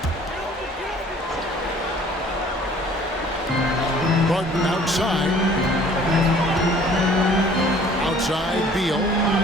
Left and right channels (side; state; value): both; normal; correlation 0.53